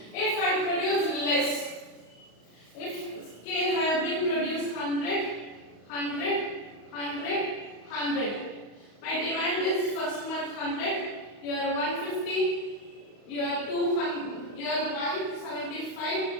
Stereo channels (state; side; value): late; right; 35 ms